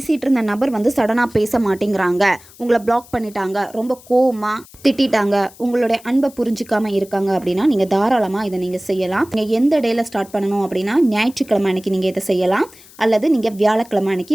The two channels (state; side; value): noise; left; hiss, 23 dB below the sound